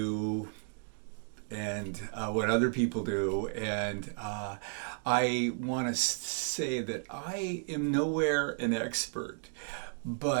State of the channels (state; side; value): silent; left; digital silence